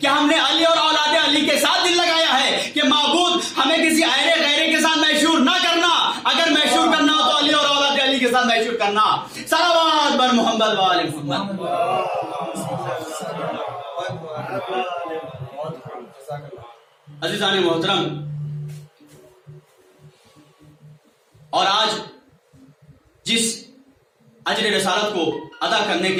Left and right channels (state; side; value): identical; both; correlation 1.00